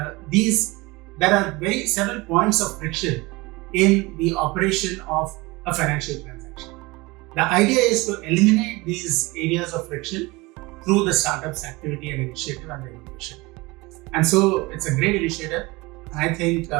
several points of friction in the operation of a financial transaction. The idea is to eliminate these areas of friction through the startup's activity and initiative and the innovation. And so it's a great initiative. I think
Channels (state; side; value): quieter; left; 23.1 dB